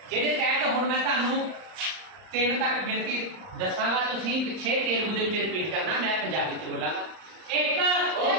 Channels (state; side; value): late; left; 39 ms